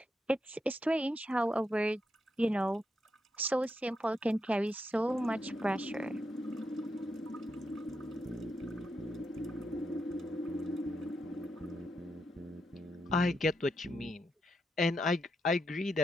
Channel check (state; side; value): normal; both; correlation 0.82